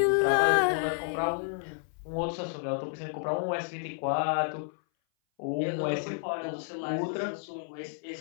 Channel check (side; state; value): right; silent; 58 dB below the other